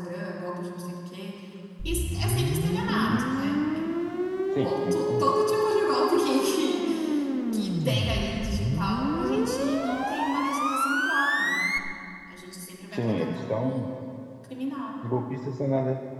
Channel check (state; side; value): identical; both; correlation 1.00